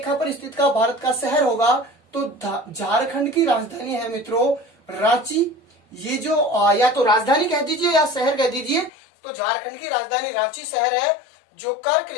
पर स्थित का भारत का शहर होगा तो झारखंड की राजधानी है मित्रों रांची। ये जो या तो राजधानी कह दीजिए या शहर कह दीजिए, तो झारखंड की राजधानी रांची शहर है जो कर्क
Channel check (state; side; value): drops out; right; at 8.9 s